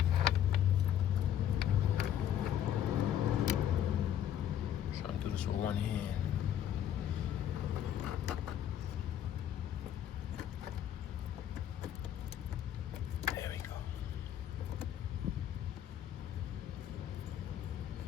trying to do this with one hand. There we go.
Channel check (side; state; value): right; quieter; 10.5 dB